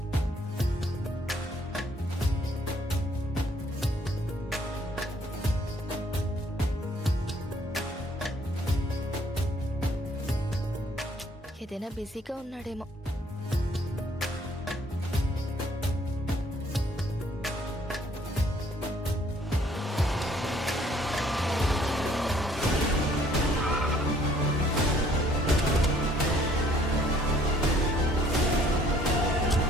ఏదైనా బిజీగా ఉన్నాడేమో.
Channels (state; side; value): normal; both; correlation 0.61